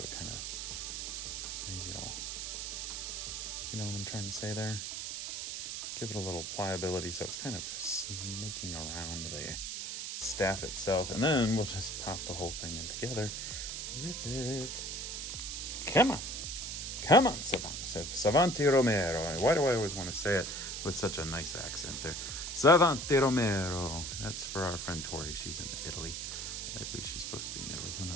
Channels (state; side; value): noise; right; hiss, 5 dB below the sound